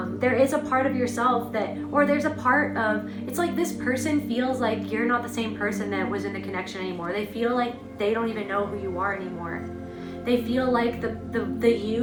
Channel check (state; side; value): identical; both; correlation 1.00